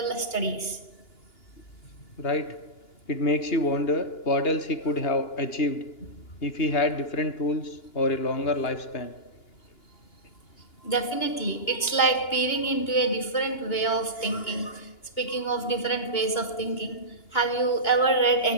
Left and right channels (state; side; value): late; right; 2.9 ms